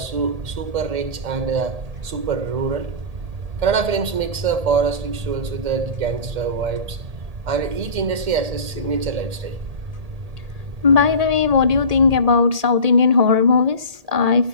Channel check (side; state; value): left; late; 1.8 ms